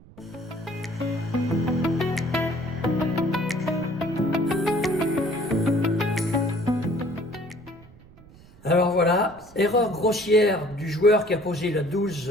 Alors voilà, erreur grossière du joueur qui a posé la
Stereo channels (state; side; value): noise; right; rumble, 23 dB below the sound